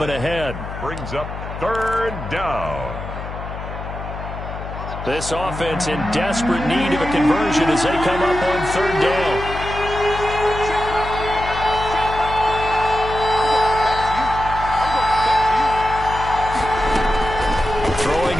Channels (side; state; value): left; noise; hum, 9 dB below the sound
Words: ahead. Brings up 3rd down. This offense in desperate need of a conversion as they come up on 3rd down. Throwing